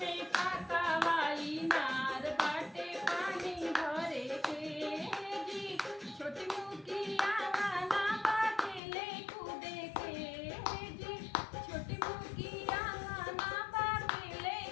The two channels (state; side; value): drops out; right; at 8.8 s